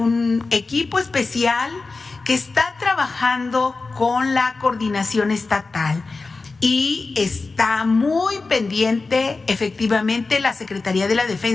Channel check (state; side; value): quieter; right; 3.9 dB